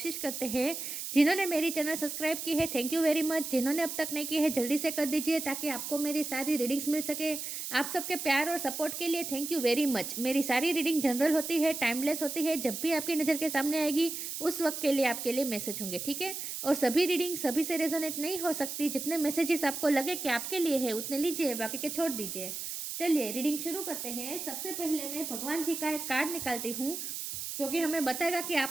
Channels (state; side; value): noise; right; hiss, 6 dB below the sound